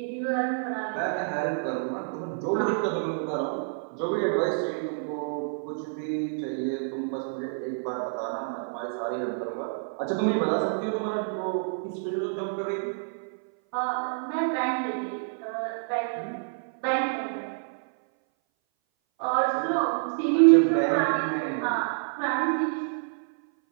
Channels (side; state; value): left; silent; 58 dB below the other